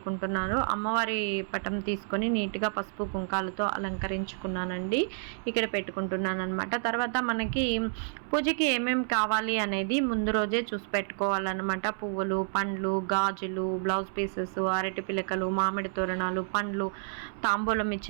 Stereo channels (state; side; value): silent; left; 58 dB below the other